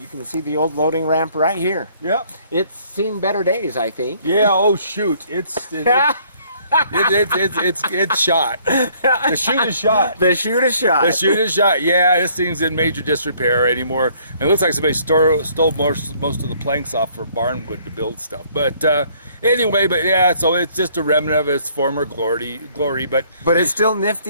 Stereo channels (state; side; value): inverted; both; correlation -0.61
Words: can see the old loading ramp right here. Yep. It's seen better days, I think. Yeah. Oh shoot! It's shot. The chute is shot. The chute is shot. The chute is shot. Yeah, this thing's in major disrepair anymore. And it looks like somebody stole most of the planks off for barnwood to build stuff. But anyway, so it's just a remnant of its former glory. But it's still